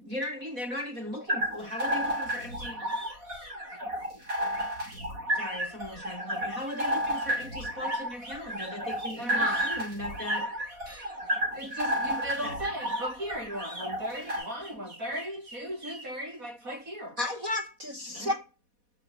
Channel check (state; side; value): late; left; 4.1 ms